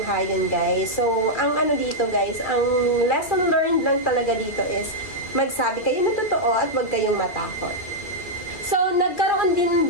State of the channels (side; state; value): right; late; 2.2 ms